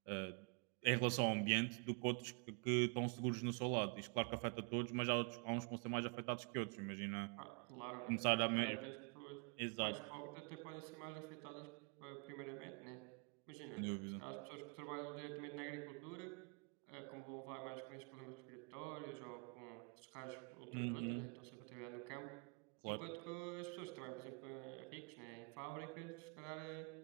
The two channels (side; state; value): left; quieter; 35.5 dB